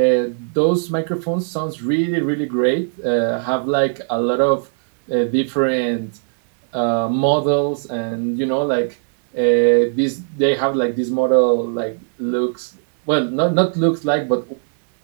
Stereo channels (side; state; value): left; silent; digital silence